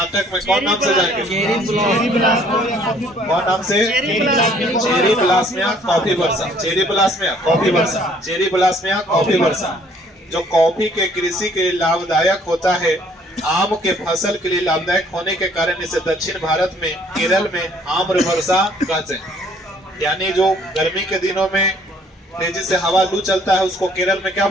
में कौन नाम से जाएंगे? कौन नाम से? चेरी ब्लास्मिया कॉफी वर्षा। चेरी ब्लास्मिया कॉफी वर्षा। चेरी ब्लास्मिया कॉफी वर्षा जो कॉफी के कृषि के लिए लाभदायक होता है। आम के फसल के लिए लाभदायक होने के कारण इसे दक्षिण भारत में केरल में आम्र वर्षा कहते हैं। यानी जो गर्मी के दिनों में तेजी से हवा लू चलता है उसको केरल में क्या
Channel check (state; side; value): normal; both; correlation 0.60